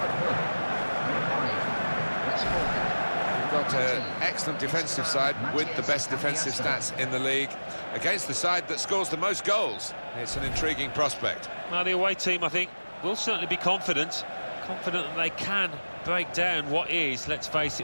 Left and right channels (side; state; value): both; inverted; correlation -1.00